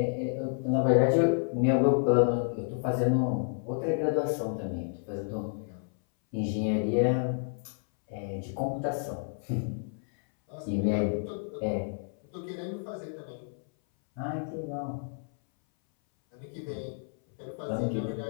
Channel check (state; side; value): silent; right; 58 dB below the other